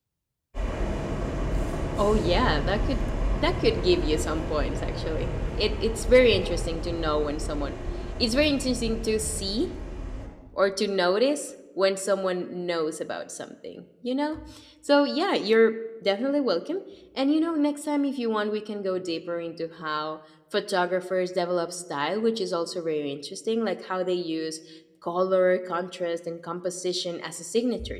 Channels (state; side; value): identical; both; correlation 1.00